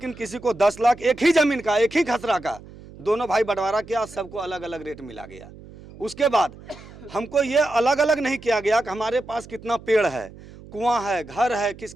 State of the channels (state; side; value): noise; right; hum, 19 dB below the sound